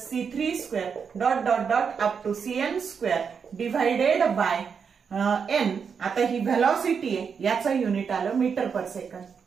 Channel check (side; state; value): left; quieter; 6.3 dB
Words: C3 square dot dot dot up to Cn square divided by n. आता ही velocity आहे, याचं युनिट आलं मीटर पर सेकंड.